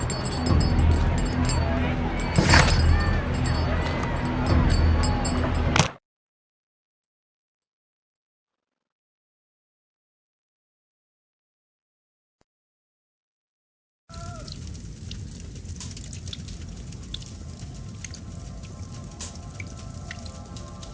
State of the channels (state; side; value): identical; both; correlation 1.00